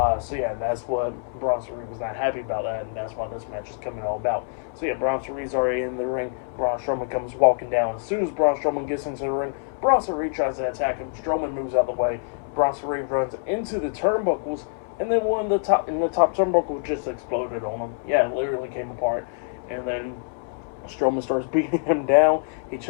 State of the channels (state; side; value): silent; right; 62 dB below the other